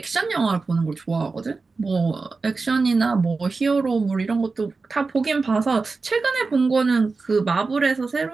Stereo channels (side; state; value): left; quieter; 4.1 dB